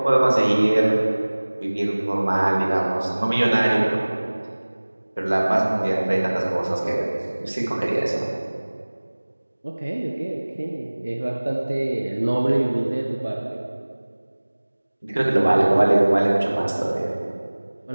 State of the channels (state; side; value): inverted; both; correlation -1.00